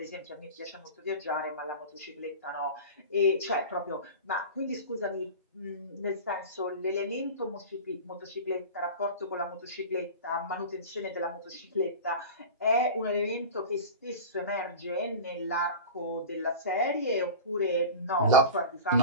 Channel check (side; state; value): both; inverted; correlation -0.31